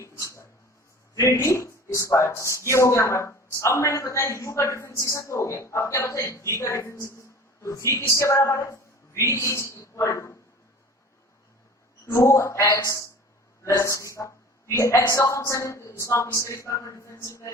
ये हो गया हमारा। अब मैंने बताया u का डिफरेंशिएशन तो हो गया, अब क्या बताया v का डिफरेंशिएशन। तो v किसके बराबर है, v is equal to 2x + 3 का, ये x का फंक्शन है, तो इसको हम किसके रिस्पेक्ट में डिफरेंशिएट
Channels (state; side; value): normal; both; correlation 0.41